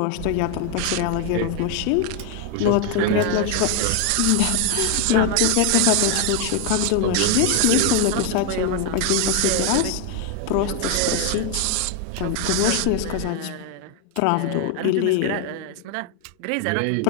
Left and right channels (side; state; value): both; different; correlation 0.01